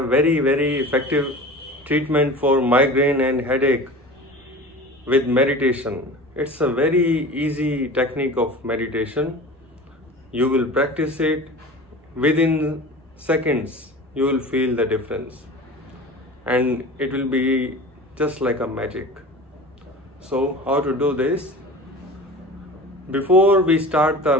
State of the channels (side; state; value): both; normal; correlation 0.36